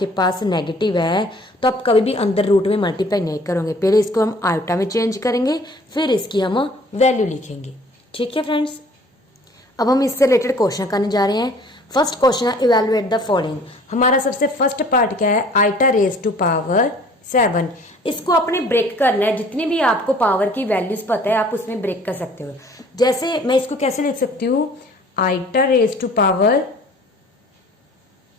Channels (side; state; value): both; normal; correlation 0.52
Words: पास नेगेटिव है तो आप कभी भी अंदर रूट में मल्टीप्लाई नहीं करोगे, पहले इसको हम आयोटा में चेंज करेंगे फिर इसकी हम वैल्यू लिखेंगे। ठीक है फ्रेंड्स, अब हम इससे रिलेटेड क्वेश्चन करने जा रहे हैं। फर्स्ट क्वेश्चन है इवेलुएट द फॉलोइंग। हमारा सबसे फर्स्ट पार्ट क्या है, आइटा रेज टू पावर 7। इसको अपने ब्रेक करना है, जितनी भी आपको पावर की वैल्यूज पता है आप उसमें ब्रेक कर सकते हो। जैसे मैं इसको कैसे लिख सकती हूँ, iota raise to power